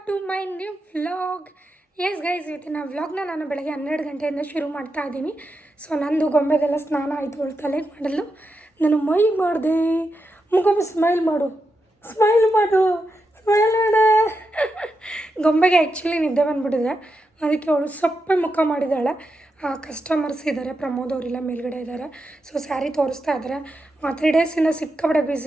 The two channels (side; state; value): both; normal; correlation 0.86